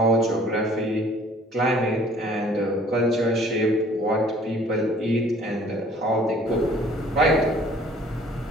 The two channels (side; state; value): both; normal; correlation 0.54